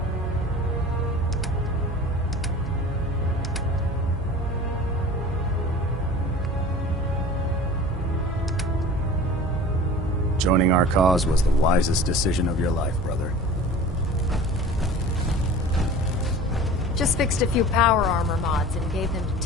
Joining our cause was the wisest decision of your life, brother. Just fixed a few power armor mods and gave them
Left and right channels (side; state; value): both; normal; correlation 0.40